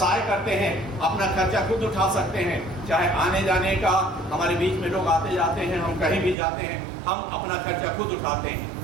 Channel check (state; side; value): drops out; left; at 6.4 s